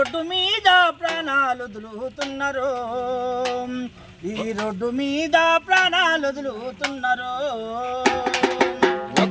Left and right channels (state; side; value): identical; both; correlation 1.00